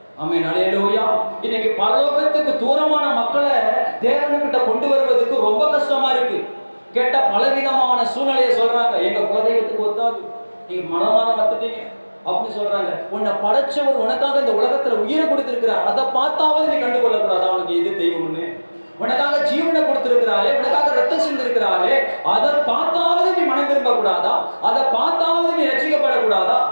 ஆமென், அல்லேலூயா. இன்னைக்கு பரலோகத்துக்கு தூரமான மக்களை தேவனுக்கிட்ட கொண்டு வருவதற்கு ரொம்ப கஷ்டமா இருக்கு. கேட்டா பலவிதமான சூழ்நிலையை சொல்றாங்க. எங்க குலதெய்வத்துக்கு ஒத்தாது, நீங்க மனமான வந்துட்டீங்க அப்படின்னு சொல்றாங்க. உன்னை படைச்சவர் உனக்காக இந்த உலகத்துல உயிரை கொடுத்திருக்கிறார், அதை பார்த்தாவது நீ கண்டுகொள்ள கூடாது அவனுக்கு எது தெய்வம்னு. உனக்காக ஜீவனை கொடுத்திருக்கிறாரே, உனக்காக ரத்தம் சிந்திருக்கிறாரே, அதை பார்த்தாவது நீ மனம் திரும்ப கூடாதா? அதை பார்த்தாவது நீ ரட்சிக்கப்படக்கூடாதா?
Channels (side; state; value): both; inverted; correlation -1.00